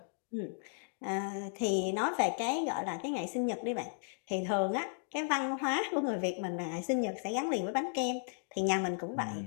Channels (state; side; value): silent; right; digital silence